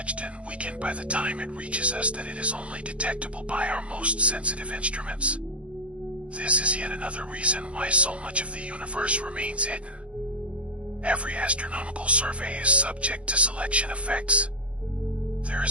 and weakened by the time it reaches us that it is only detectable by our most sensitive instruments. This is yet another reason why so much of the universe remains hidden. Every astronomical survey is subject to selection effects. There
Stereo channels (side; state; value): left; late; 0.061 ms